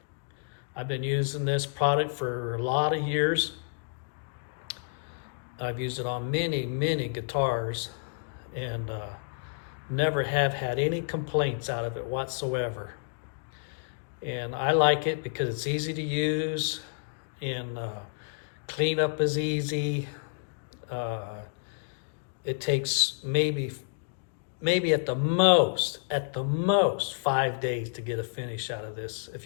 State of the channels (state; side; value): silent; right; digital silence